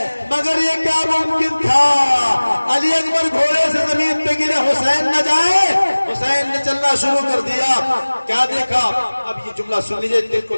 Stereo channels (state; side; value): inverted; both; correlation -1.00